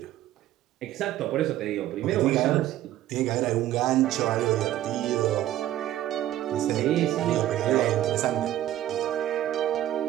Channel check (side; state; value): left; quieter; 13.3 dB